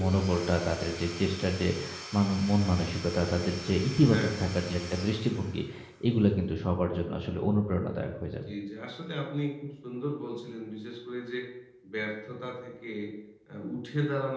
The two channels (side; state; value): both; identical; correlation 1.00